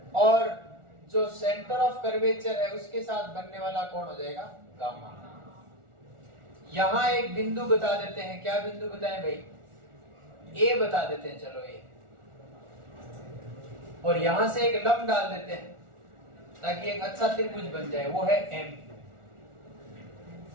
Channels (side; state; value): left; late; 1.4 ms